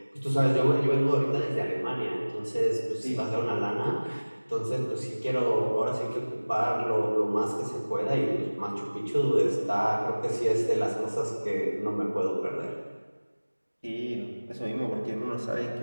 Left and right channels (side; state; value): both; inverted; correlation -1.00